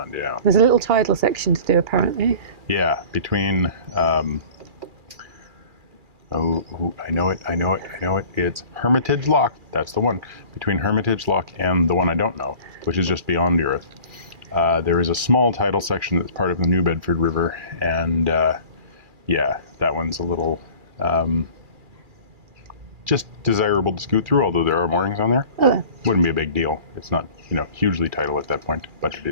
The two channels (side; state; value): left; late; 2.4 ms